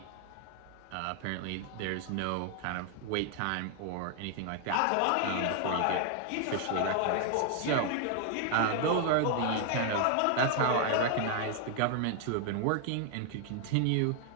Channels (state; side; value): different; both; correlation 0.00